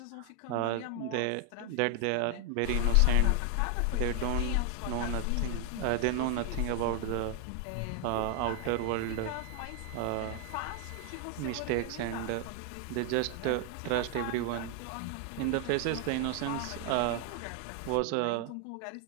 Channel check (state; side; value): different; both; correlation 0.00